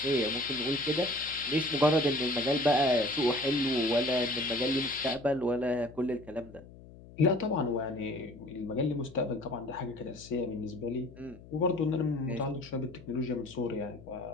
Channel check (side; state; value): left; noise; hum, 19 dB below the sound